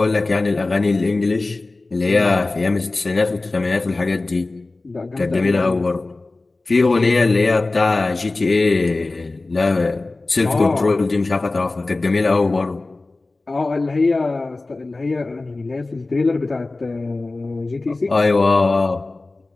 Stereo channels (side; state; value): right; quieter; 3.2 dB